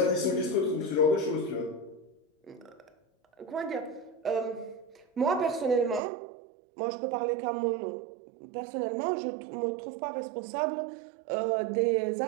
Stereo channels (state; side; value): drops out; left; at 6.0 s